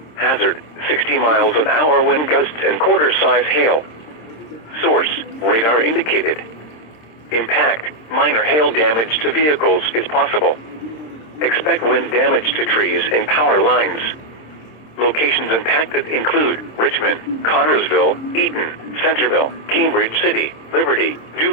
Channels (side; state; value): right; late; 26 ms